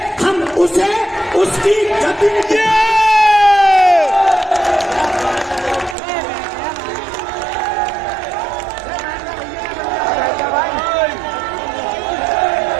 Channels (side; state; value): left; drops out; at 6.0 s